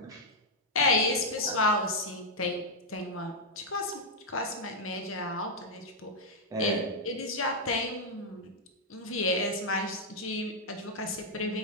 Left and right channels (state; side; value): normal; both; correlation -0.03